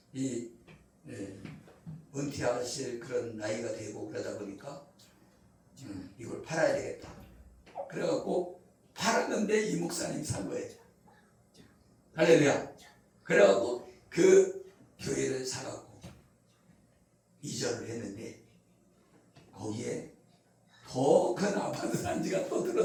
이 은퇴하실 그런 나이가 되고 그러다 보니까 이걸 팔아야 되겠다. 그래갖고 팔았는데 이 목사님이 산 거예요. 할렐루야. 그래갖고 그 교회를 사갖고 이전을 했는데 거기에 더 큰 아파트 단지가 또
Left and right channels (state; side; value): identical; both; correlation 1.00